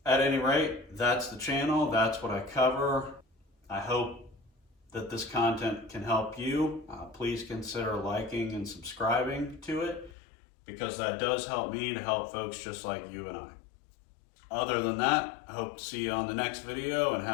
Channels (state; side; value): drops out; right; at 10.1 s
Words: at any rate, that's the channel, that's what I cover. I hope that this content can help you. Please consider liking and subscribing to it, because that does help me to help folks just like you and I. Other than that, I hope to see you on the next video and